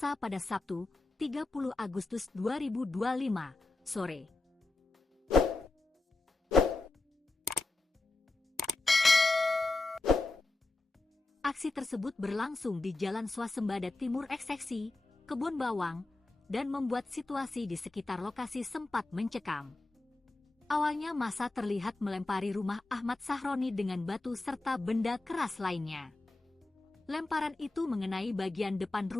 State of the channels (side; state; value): right; quieter; 3.0 dB